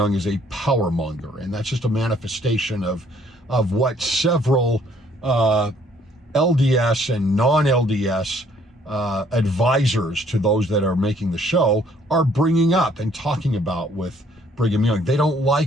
is a power monger, and that's just a manifestation of what several LDS and non-LDS advisors to those that are making the show are bringing up and talking about with Brigham Young. They don't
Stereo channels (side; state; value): both; normal; correlation 0.63